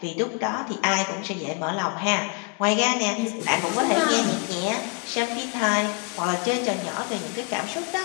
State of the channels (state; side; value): quieter; right; 32.3 dB